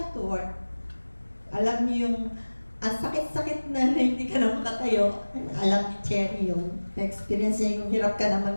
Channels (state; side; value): inverted; both; correlation -1.00